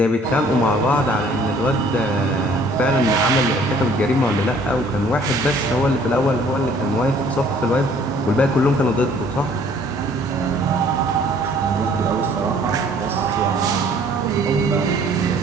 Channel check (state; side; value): normal; both; correlation 0.57